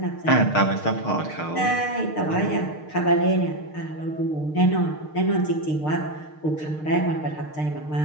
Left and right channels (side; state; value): right; late; 6.6 ms